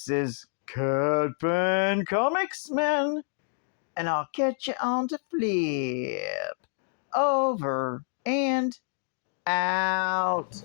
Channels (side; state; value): right; silent; 58 dB below the other